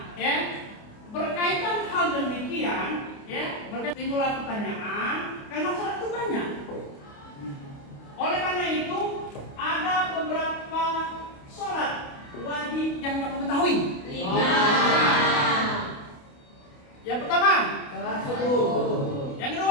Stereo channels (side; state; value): right; late; 28 ms